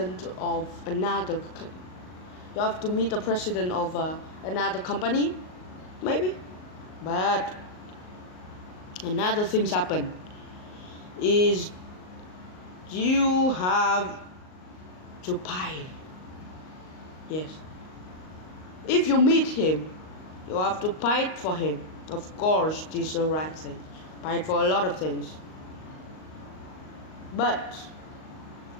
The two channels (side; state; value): right; late; 38 ms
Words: of another. You have to meet the president of another company, maybe, but another things happen. Is you have to pay. Yes. If you meet him, you have to pay for him. Of course, this is the right thing. Pay for a lot of things. But